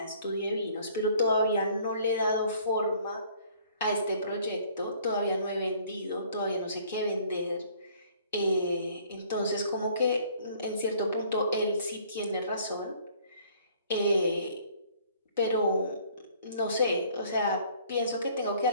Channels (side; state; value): both; inverted; correlation -0.57